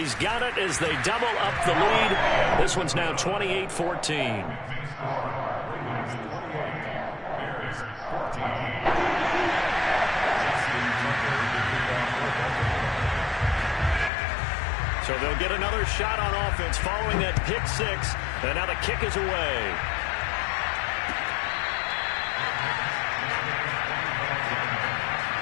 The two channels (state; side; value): drops out; right; at 14.1 s